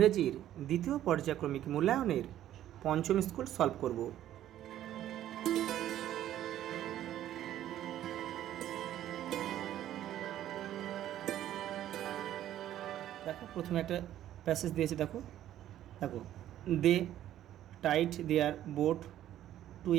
দ্বিতীয় পর্যায়ক্রমিক মূল্যায়নের পঞ্চম স্কুল সলভ করব। দেখো প্রথমে একটা প্যাসেজ দিয়েছে, দেখো দেখো they tied their boat to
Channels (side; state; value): left; quieter; 12.2 dB